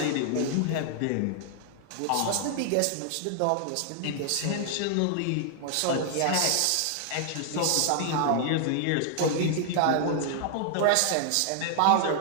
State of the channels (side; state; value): both; different; correlation 0.00